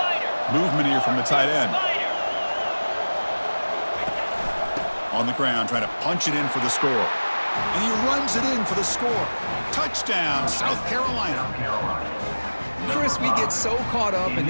Movement here from the tight end. On the ground, trying to punch it in for the score. And he runs it in for the score. Touchdown, South Carolina. Chris, we get so caught up in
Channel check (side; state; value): both; inverted; correlation -1.00